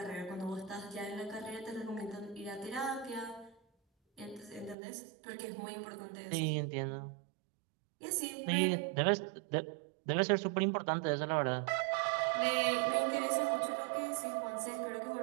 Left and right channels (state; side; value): drops out; left; at 4.8 s